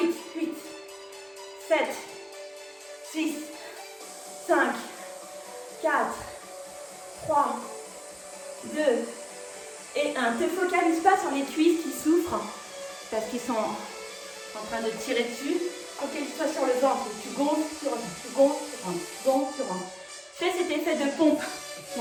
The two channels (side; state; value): both; identical; correlation 1.00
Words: 8. 7, 6, 5, 4, 3, 2 et 1. Ne te focalise pas sur les cuisses qui souffrent parce qu'ils sont en train de tirer dessus. Focalise-toi sur le ventre. Tu gonfles, tu rentres, tu gonfles, tu rentres, tu gonfles, tu rentres. Fais cet effet de pompe.